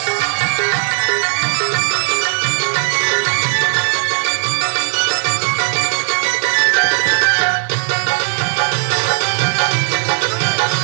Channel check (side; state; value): left; silent; digital silence